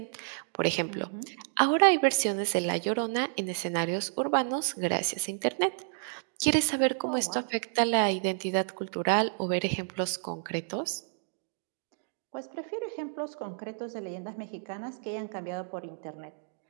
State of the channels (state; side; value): silent; left; digital silence